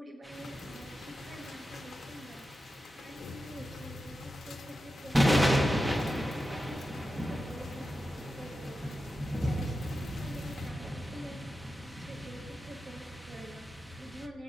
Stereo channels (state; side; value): normal; both; correlation 0.91